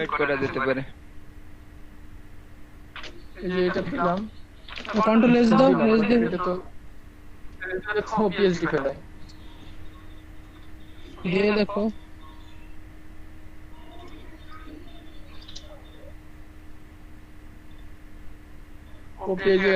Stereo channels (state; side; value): identical; both; correlation 1.00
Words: করা যেতে পারে এই যে এটা দিলাম কন্ট্রোল এস দাও এস দে এটা তো পিএসডি ফেলে দিয়ে দেখো ও পেজে